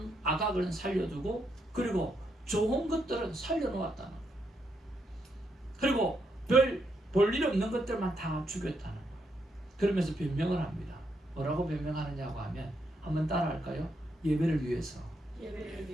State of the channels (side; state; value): both; normal; correlation 0.79